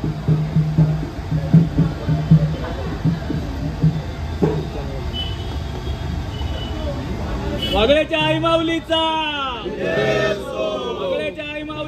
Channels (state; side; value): identical; both; correlation 1.00